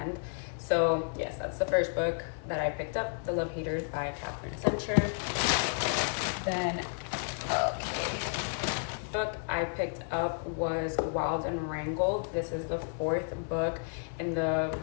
So yes, that's the first book that I picked up, The Love Haters by Catherine Center. Then book I picked up was Wild and Wrangled. This is the 4th book in the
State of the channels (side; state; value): right; silent; 57 dB below the other